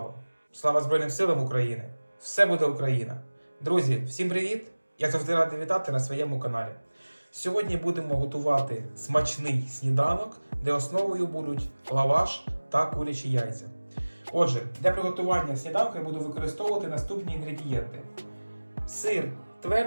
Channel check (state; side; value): inverted; both; correlation -1.00